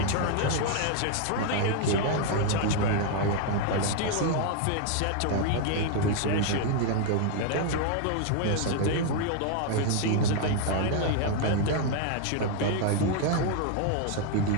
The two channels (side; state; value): both; different; correlation 0.00